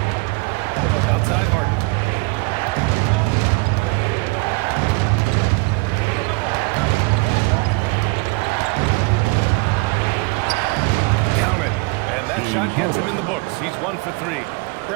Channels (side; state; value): left; quieter; 26.8 dB